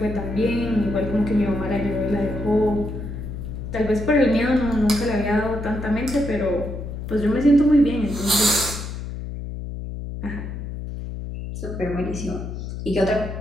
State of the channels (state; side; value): noise; left; hum, 7 dB below the sound